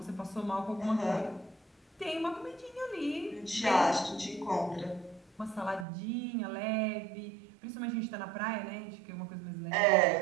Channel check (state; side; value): drops out; left; at 5.9 s